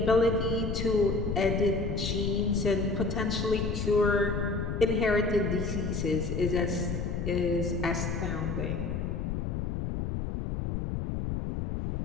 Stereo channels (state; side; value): noise; left; rumble, 2 dB below the sound